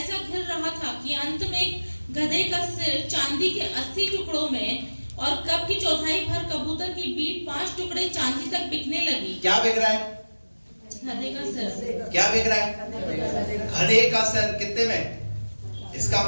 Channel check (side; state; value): both; inverted; correlation -1.00